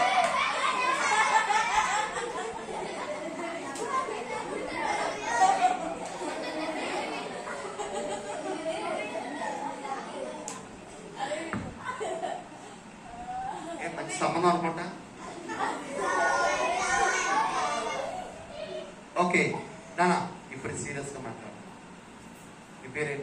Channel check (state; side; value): identical; both; correlation 1.00